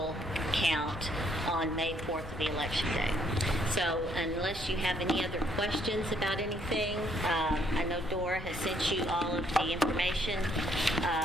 count on May 4th of the election day. So unless you have any other questions about anything, I know Dora has sent you all of the information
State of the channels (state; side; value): noise; left; rumble, 12 dB below the sound